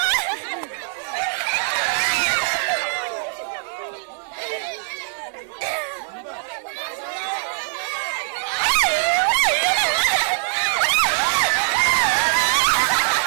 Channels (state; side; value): silent; left; digital silence